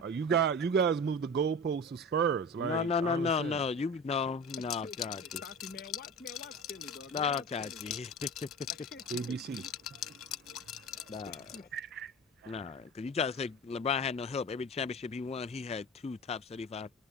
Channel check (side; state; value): both; normal; correlation 0.32